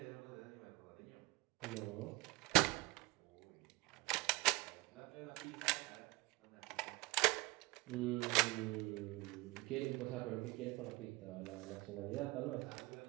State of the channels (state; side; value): quieter; left; 23.3 dB